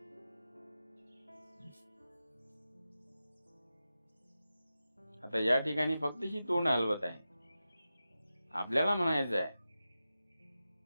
आता या ठिकाणी फक्त ही तोंड हलवत आहे. आपल्याला म्हणायचं आहे,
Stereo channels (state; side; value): inverted; both; correlation -0.92